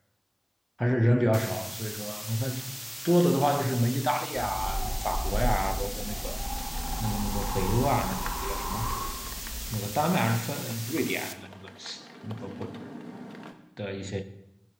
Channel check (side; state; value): both; identical; correlation 1.00